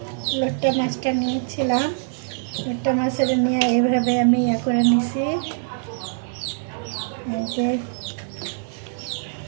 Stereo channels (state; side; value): silent; left; digital silence